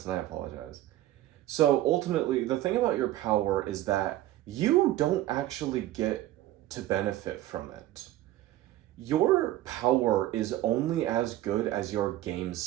and I apologize. So ultimately, the thing about your power is that you don't actually get to benefit from it. Your power is only as good as your game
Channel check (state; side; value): quieter; left; 14.6 dB